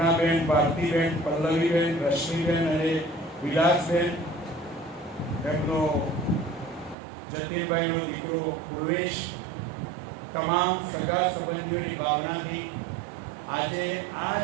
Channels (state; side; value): drops out; left; at 7.0 s